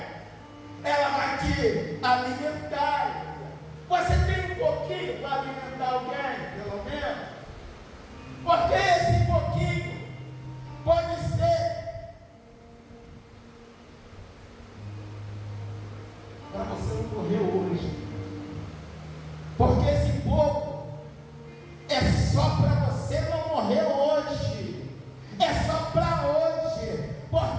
ela vai te alimentar. Você tem um pouquinho para alimentar alguém, pelo menos? Porque esse pouquinho pode ser para você não morrer hoje. Porque esse pouco é só para você não morrer hoje. É só para hoje.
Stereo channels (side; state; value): both; identical; correlation 1.00